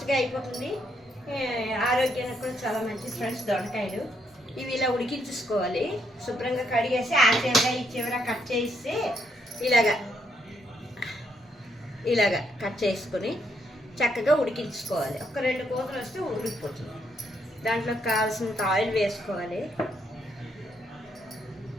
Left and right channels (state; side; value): normal; both; correlation 0.75